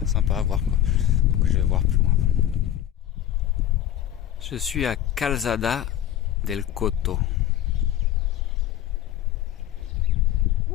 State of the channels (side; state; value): right; quieter; 11.7 dB